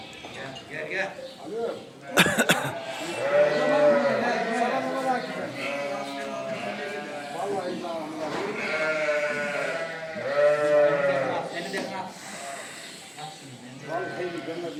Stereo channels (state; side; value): identical; both; correlation 1.00